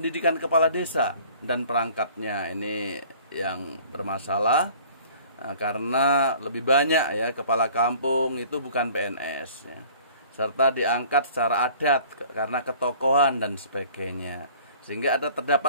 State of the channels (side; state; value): both; inverted; correlation -0.51